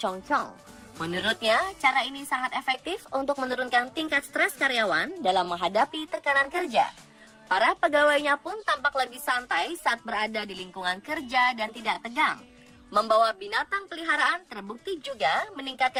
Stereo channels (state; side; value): identical; both; correlation 1.00